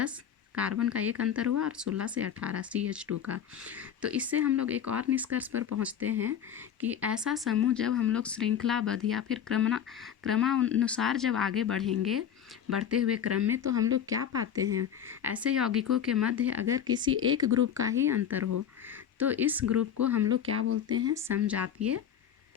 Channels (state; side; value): quieter; right; 8.8 dB